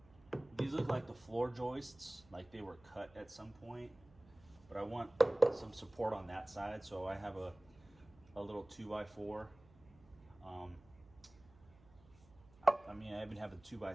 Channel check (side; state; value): right; noise; hum, 26 dB below the sound